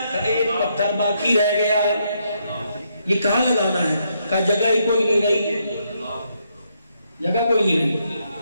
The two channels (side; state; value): both; inverted; correlation -0.76